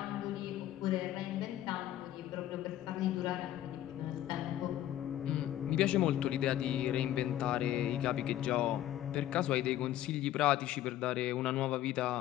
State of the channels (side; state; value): right; quieter; 12.8 dB